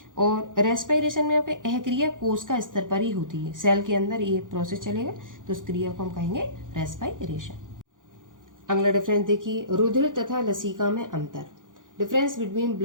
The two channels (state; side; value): late; left; 0.88 ms